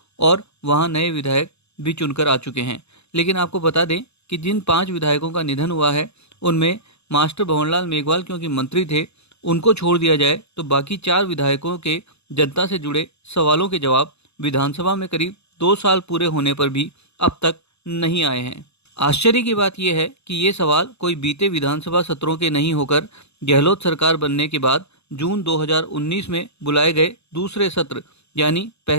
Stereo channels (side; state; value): right; late; 0.80 ms